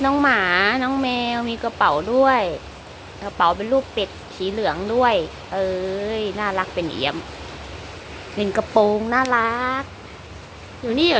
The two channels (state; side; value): identical; both; correlation 1.00